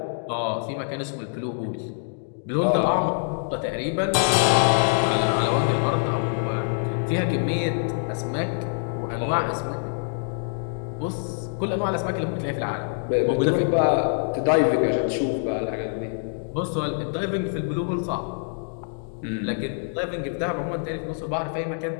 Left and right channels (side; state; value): right; silent; digital silence